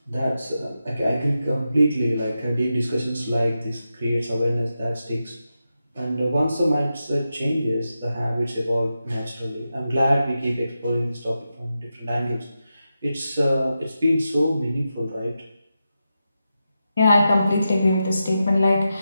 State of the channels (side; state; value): both; inverted; correlation -0.89